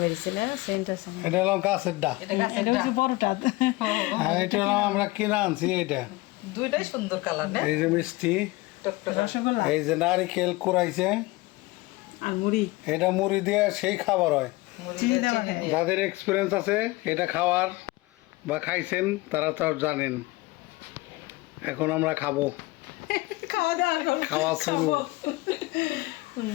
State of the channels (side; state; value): right; quieter; 21.4 dB